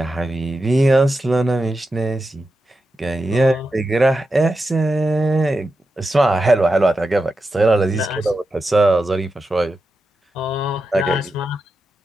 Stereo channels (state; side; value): normal; both; correlation 0.89